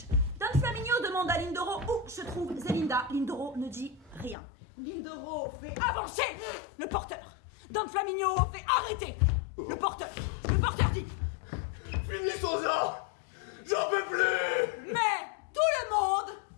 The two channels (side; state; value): right; drops out; at 4.4 s